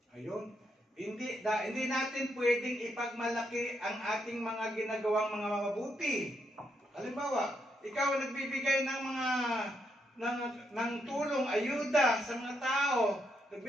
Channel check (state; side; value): normal; both; correlation 0.78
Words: Ayun. Hindi natin pwedeng ipagmalaki ang ating mga ginagawang mga mabuti. Halimbawa, ikaw nagbibigay ng tulong, ayuda sa mga tao,